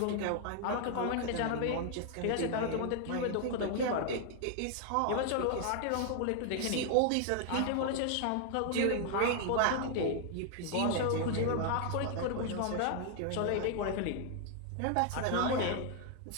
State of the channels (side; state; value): both; different; correlation 0.00